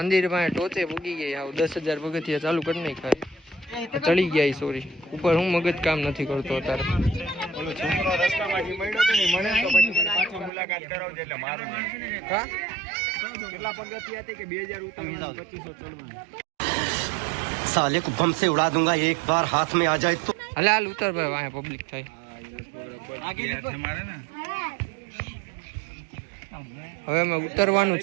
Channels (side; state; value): left; drops out; at 10.5 s